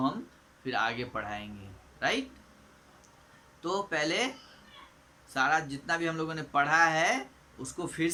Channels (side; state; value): both; identical; correlation 1.00